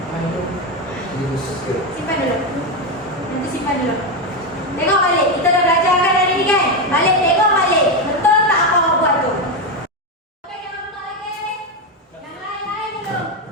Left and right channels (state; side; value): normal; both; correlation 0.10